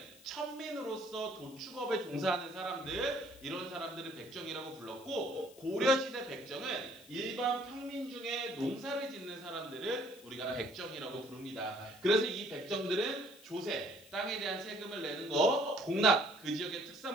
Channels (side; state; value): left; noise; hiss, 22 dB below the sound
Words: 천민으로서 도축업에 종사하는 사람들, 이런 사람들을 백정이라고 불렀고 고려시대 백정은 일반 평민 중에 농사를 짓는 사람들을 우리가 백정이라고 부릅니다. 그래서 이 백정들은 조세, 땅에 대한 세금을 내는 거, 공납, 그 지역의